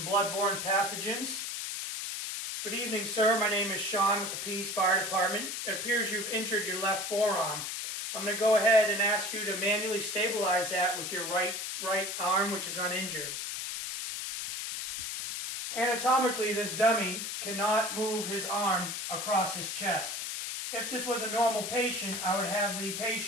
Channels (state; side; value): noise; left; hiss, 4 dB below the sound